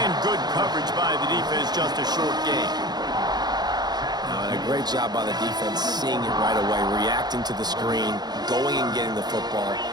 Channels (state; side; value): late; left; 0.20 ms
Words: good coverage by the defense, just a short gain. And a great job by the defense seeing it right away, reacting to the screen, going and getting the football,